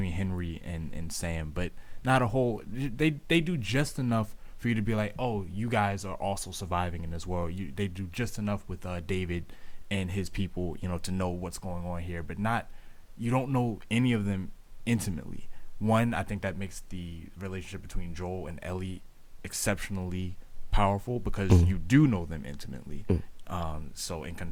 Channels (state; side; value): identical; both; correlation 1.00